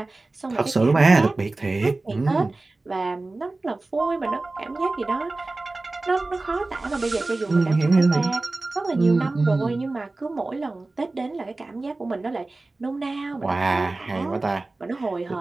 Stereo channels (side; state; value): left; quieter; 3.2 dB